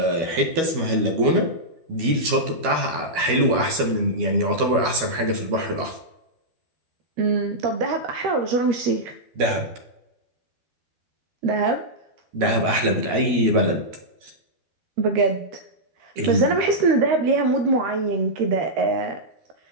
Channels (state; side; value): late; left; 12 ms